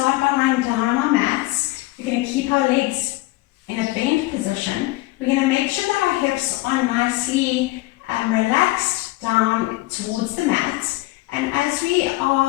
by lying down on our mats. We're going to keep our legs in a bent position. We're going to make sure that our hips are nicely relaxed down towards the mat. And as we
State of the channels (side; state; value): right; quieter; 19.7 dB